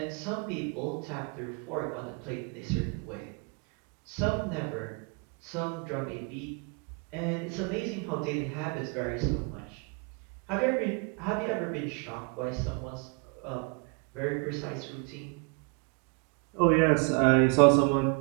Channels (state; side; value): quieter; left; 34.5 dB